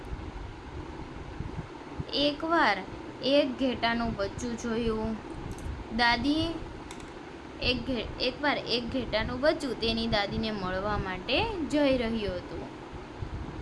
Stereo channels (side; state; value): both; identical; correlation 1.00